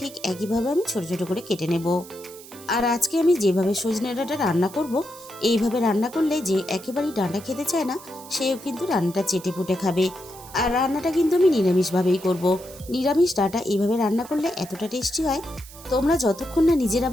একইভাবে আমি ছোট ছোট করে কেটে নেব। আর আজকে আমি যেভাবে সজনে ডাঁটা রান্না করব, এইভাবে রান্না করলে যে একেবারেই ডাঁটা খেতে চায় না সেও কিন্তু রান্নাটা চেটে পুটে খাবে। আর রান্নাটা কিন্তু আমি নিরামিষভাবেই করব। নিরামিষ ডাঁটা এইভাবে রান্না করলে এতটা টেস্টি হয়, তোমরা যতক্ষণ না নিজেরা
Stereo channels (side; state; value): right; noise; hiss, 18 dB below the sound